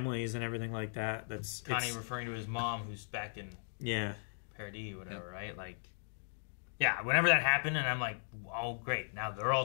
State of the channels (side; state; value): right; silent; digital silence